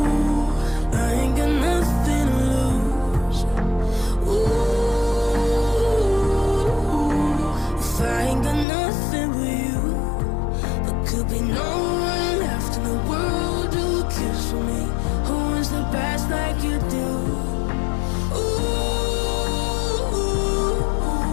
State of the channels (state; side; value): drops out; right; at 8.7 s